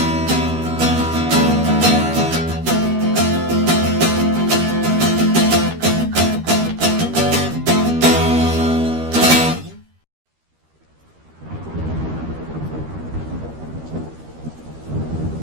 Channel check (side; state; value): left; late; 13 ms